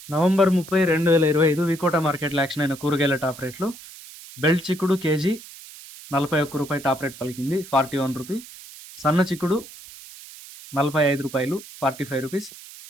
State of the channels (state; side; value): noise; right; hiss, 17 dB below the sound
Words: నవంబర్ 30, 2025 వికోట మార్కెట్లో యాక్షన్ అయిన కూరగాయల టాప్ రేట్లు. బెల్ట్ చిక్కుడు కేజీ 41 రూపాయి టాప్ రేట్ పలికింది, 41 రూపీ. సన్న చిక్కుడు 45 రూపాయలు, 45 రూపీస్.